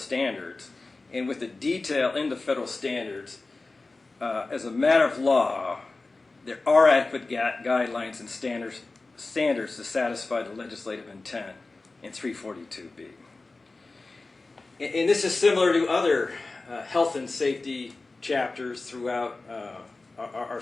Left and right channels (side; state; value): right; quieter; 3.4 dB